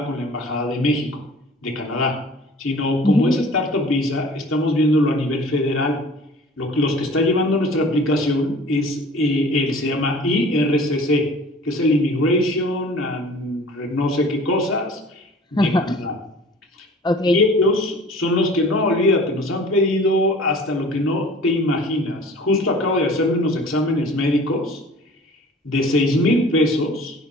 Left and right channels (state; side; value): normal; both; correlation 0.46